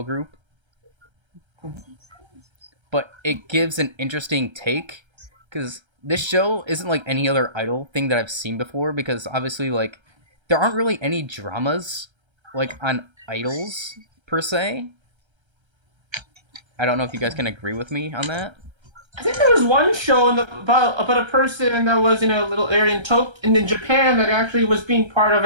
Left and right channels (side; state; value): left; late; 1.3 ms